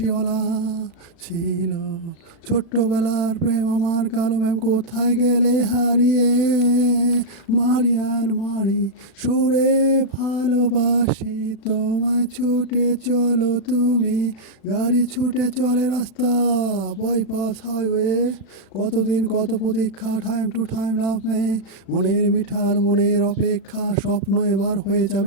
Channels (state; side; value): late; right; 36 ms